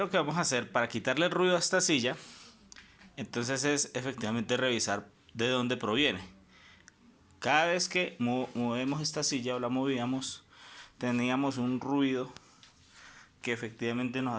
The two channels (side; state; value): both; identical; correlation 1.00